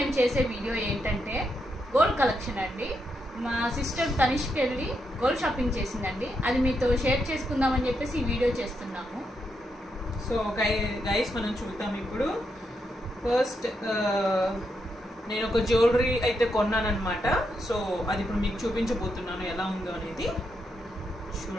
చేసే వీడియో ఏంటంటే గోల్డ్ కలెక్షన్ అండి. మా సిస్టర్ తనిష్కి వెళ్ళి గోల్డ్ షాపింగ్ చేసిందండి. అది మీతో షేర్ చేసుకుందామని చెప్పేసి ఈ వీడియో చేస్తున్నాము. సో గైస్ మనం చూద్దాం ఇప్పుడు. ఫస్ట్ నేను ఒక జ్యువెలరీ అయితే కొన్నానమాట. సో అది ఇప్పుడు మీకు చూపించబోతున్నాను ఎలా ఉందో అనేది.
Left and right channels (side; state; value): both; normal; correlation 0.81